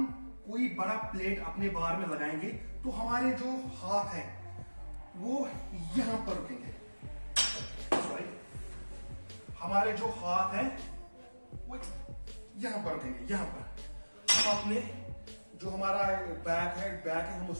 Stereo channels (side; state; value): both; inverted; correlation -1.00